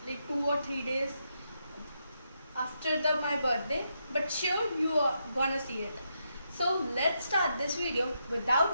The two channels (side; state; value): both; inverted; correlation -0.81